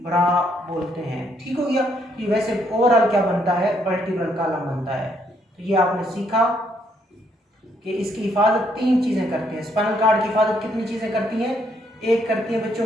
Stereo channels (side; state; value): both; normal; correlation 0.72